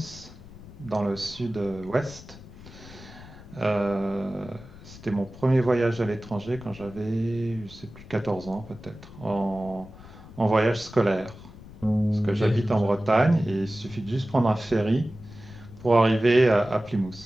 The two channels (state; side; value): noise; left; rumble, 18 dB below the sound